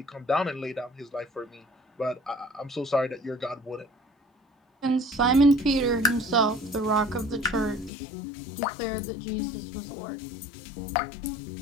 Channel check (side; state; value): right; drops out; at 7.9 s